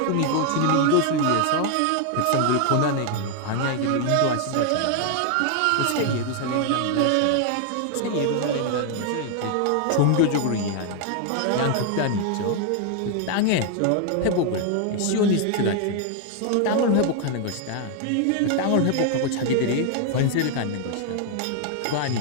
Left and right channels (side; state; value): both; different; correlation 0.00